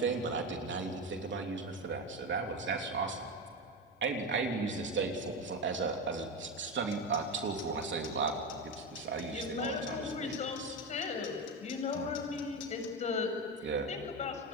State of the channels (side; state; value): both; normal; correlation 0.17